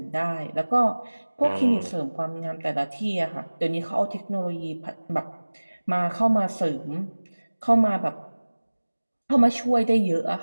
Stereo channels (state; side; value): inverted; both; correlation -1.00